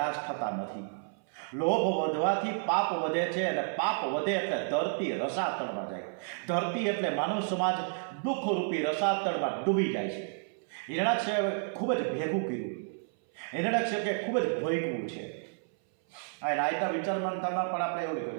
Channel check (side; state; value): left; silent; 57 dB below the other